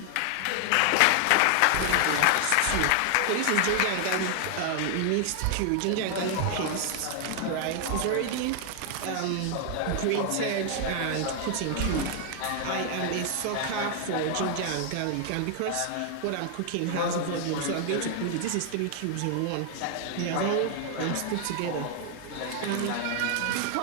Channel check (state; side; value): different; both; correlation 0.00